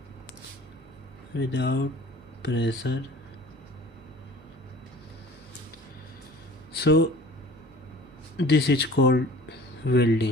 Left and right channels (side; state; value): both; normal; correlation 0.46